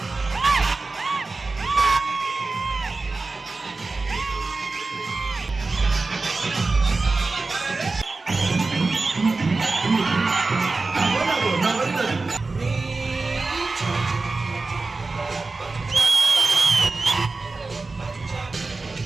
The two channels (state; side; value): quieter; left; 3.7 dB